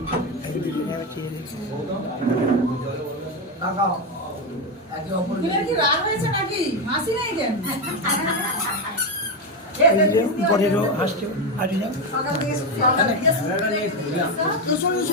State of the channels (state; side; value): normal; both; correlation 0.11